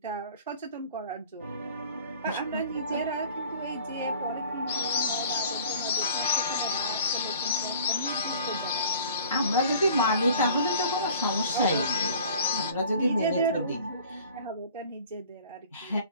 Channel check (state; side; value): inverted; both; correlation -0.47